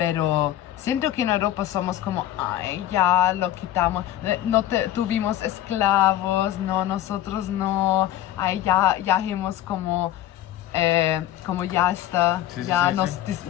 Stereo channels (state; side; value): quieter; right; 12.8 dB